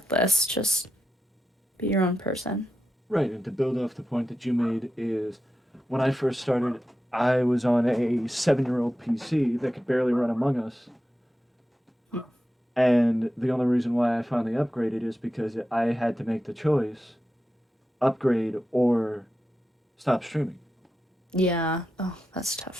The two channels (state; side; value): normal; both; correlation 0.90